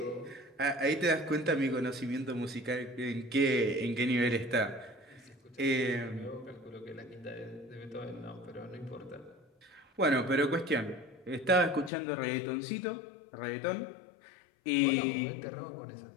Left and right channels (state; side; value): drops out; right; at 11.9 s